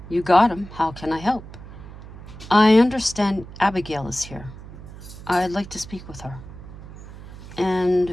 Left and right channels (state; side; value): noise; right; hum, 15 dB below the sound